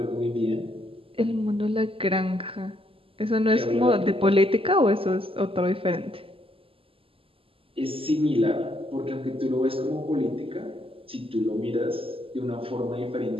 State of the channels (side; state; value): left; late; 0.26 ms